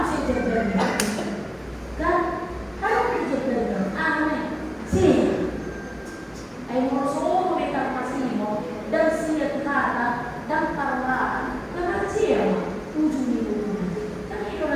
mesti terjadi? Kan? Apa mesti terjadi? Aneh. Sih. Ayo merosot mereka masih mau dan siap kata dan parah. Karena siapa? Ujung itu. Kan itu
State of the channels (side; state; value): both; identical; correlation 1.00